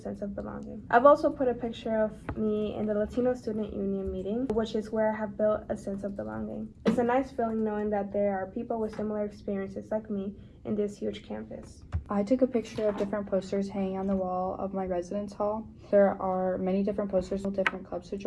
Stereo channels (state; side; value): identical; both; correlation 1.00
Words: of belonging. I've also put a picture of me in the Latino Student Union meeting, which is where I have built a sense of belonging. It's a nice feeling knowing that there are people with similar experiences like me in this huge campus. I took a picture of different posters hanging on the wall of my residence hall. There are many different posters with different clubs to